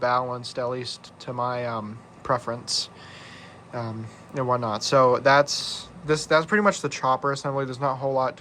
at least to my preference, and whatnot. So that's pretty much the chopper assembly. There's not a whole lot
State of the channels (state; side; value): identical; both; correlation 1.00